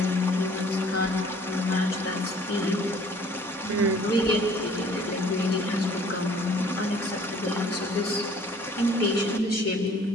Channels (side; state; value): both; normal; correlation 0.54